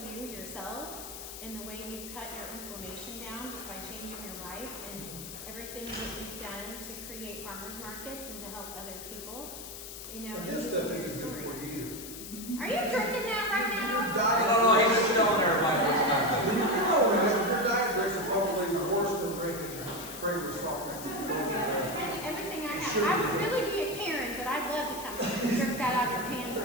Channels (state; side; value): noise; left; hiss, 11 dB below the sound